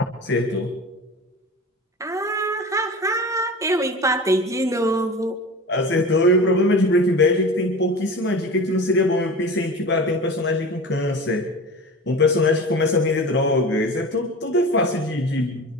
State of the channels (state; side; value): normal; both; correlation 0.33